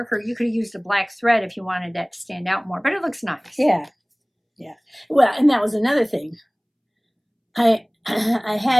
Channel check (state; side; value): identical; both; correlation 1.00